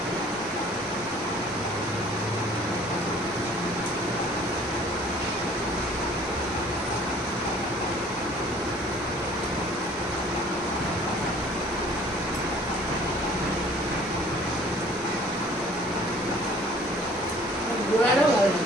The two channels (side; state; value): both; normal; correlation 0.53